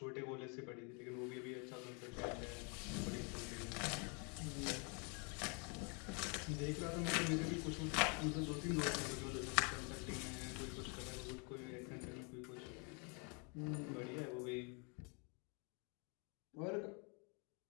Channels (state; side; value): quieter; right; 35.2 dB